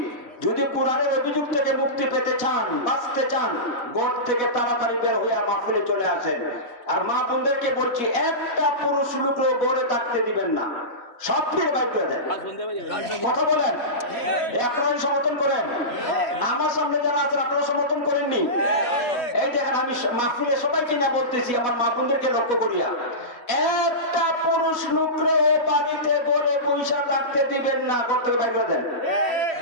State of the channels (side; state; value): right; late; 4.1 ms